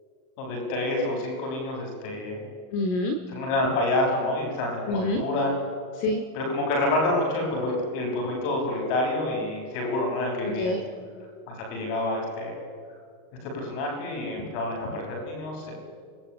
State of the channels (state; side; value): late; right; 38 ms